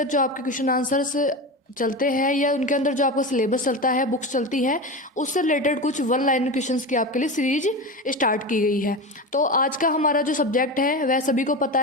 जो आपके क्वेश्चन आंसर्स चलते हैं या उनके अंदर जो आपका सिलेबस चलता है, बुक्स चलती हैं, उससे रिलेटेड कुछ वन लाइन क्वेश्चंस की आपके लिए सीरीज स्टार्ट की गई है। तो आज का हमारा जो सब्जेक्ट है वह सभी को पता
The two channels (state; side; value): normal; both; correlation 0.24